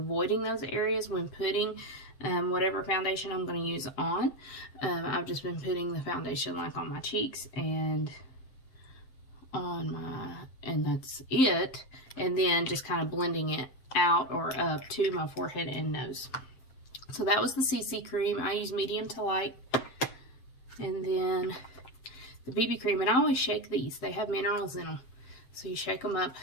those areas when putting whatever foundation I'm going to use on. I've just been putting the foundation like on my cheeks and on my, and that's it, and then just kind of blending it out or up to my forehead and nose. So that was the CC cream. I use medium to light, and then the BB cream, and I always shake these. They have minerals in them. So you shake them up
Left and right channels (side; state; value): right; late; 7.6 ms